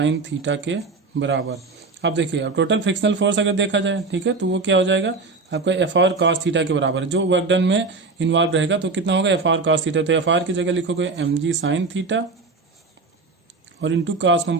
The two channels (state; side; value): quieter; left; 4.0 dB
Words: थीटा के बराबर। अब देखिए अब टोटल फ्रिक्शनल फोर्स अगर देखा जाए, ठीक है, तो वो क्या हो जाएगा आपका एफ आर कॉस थीटा के बराबर है। जो वर्क डन में इन्वॉल्व रहेगा तो कितना होगा, एफ आर कॉस थीटा। तो एफ आर की जगह लिखोगे एम जी साइन थीटा और इंटू कॉस